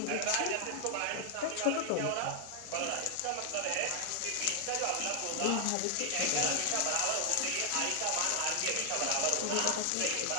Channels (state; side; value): different; both; correlation 0.00